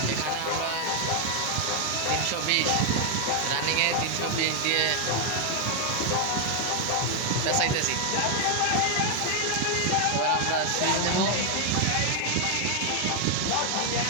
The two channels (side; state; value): both; different; correlation 0.00